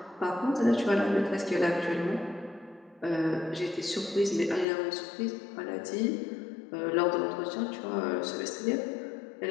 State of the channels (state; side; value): drops out; right; at 4.7 s